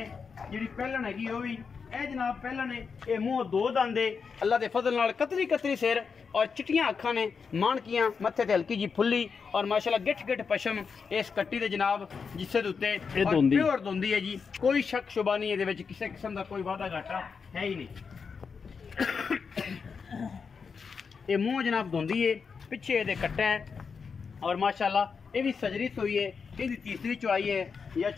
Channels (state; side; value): quieter; right; 5.6 dB